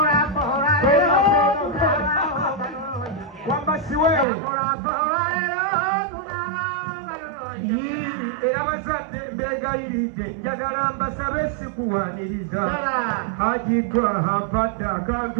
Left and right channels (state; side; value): drops out; left; at 4.2 s